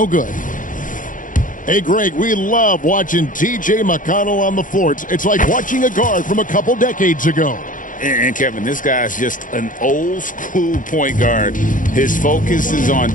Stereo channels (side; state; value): right; late; 0.38 ms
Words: good. Hey, Greg, we love watching T.J. McConnell on the floor. It's like watching a guard from a couple decades ago. And Kevin, this guy's just an old school point guard. His focus is on